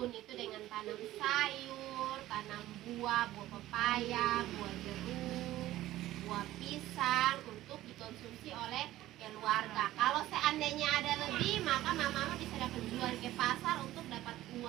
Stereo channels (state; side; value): quieter; left; 15.1 dB